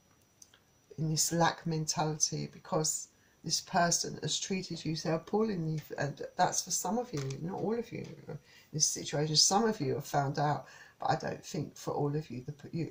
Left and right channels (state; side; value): identical; both; correlation 1.00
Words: in this lack mentality, because this person has treated you so appallingly. And that's for some of you, not all of you in this situation. Some of you have found out, but I don't think for all of you,